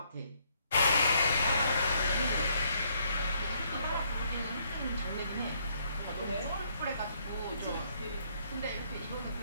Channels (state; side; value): inverted; both; correlation -0.69